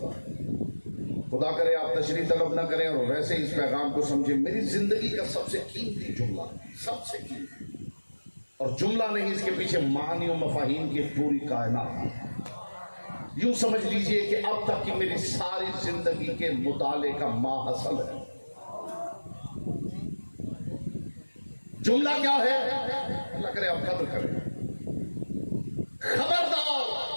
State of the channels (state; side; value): inverted; both; correlation -1.00